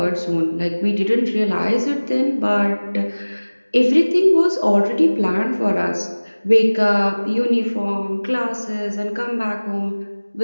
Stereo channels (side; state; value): both; inverted; correlation -1.00